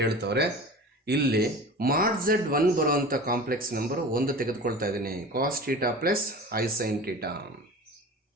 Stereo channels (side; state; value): both; normal; correlation 0.36